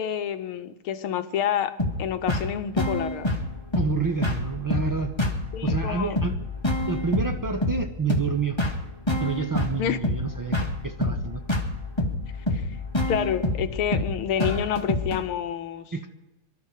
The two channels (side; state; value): right; late; 1.3 ms